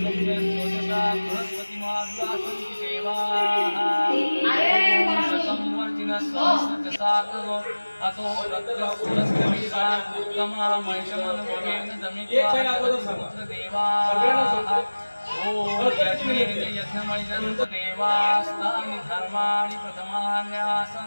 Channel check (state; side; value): inverted; both; correlation -1.00